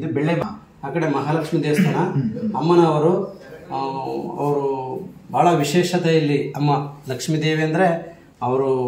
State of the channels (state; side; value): identical; both; correlation 1.00